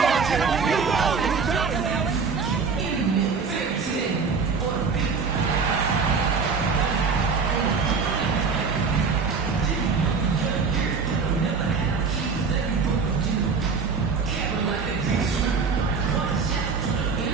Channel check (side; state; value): left; quieter; 5.2 dB